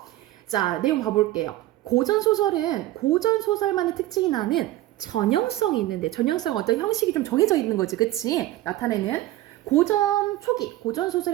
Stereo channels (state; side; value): quieter; left; 15.9 dB